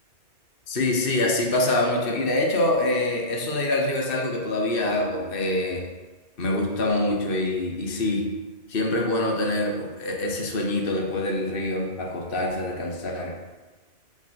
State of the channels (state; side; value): late; right; 2.6 ms